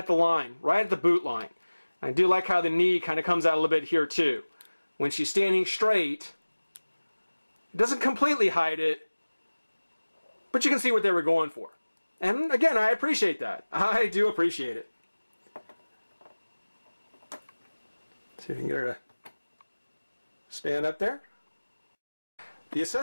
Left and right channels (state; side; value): inverted; both; correlation -1.00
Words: the line, right at the boot line. I do like how the knee kind of comes out a little bit here too. When she's standing straight, it doesn't completely hide it, but you can see what they were going for. And again, I appreciate that. I do appreciate it. See if we can get her to stand up there. The